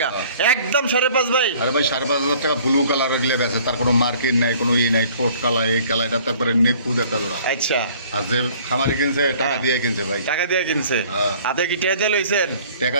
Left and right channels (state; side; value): inverted; both; correlation -0.53